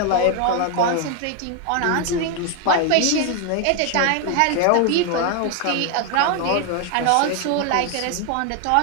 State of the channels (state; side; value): different; both; correlation 0.01